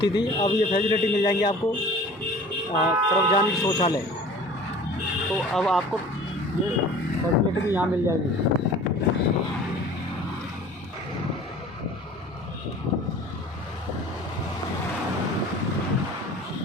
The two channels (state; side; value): normal; both; correlation 0.44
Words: थी, अब ये फैसिलिटी मिल जाएंगी आपको। सार्वजनिक शौचालय, तो अब आपको ये फैसिलिटी भी यहाँ मिल जाएगी।